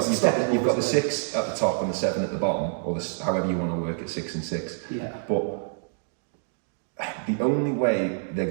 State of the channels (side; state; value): left; silent; digital silence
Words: the 6 at the top and the 7 at the bottom, or however you want to work it, 6 and 6. Yeah. But the only way they're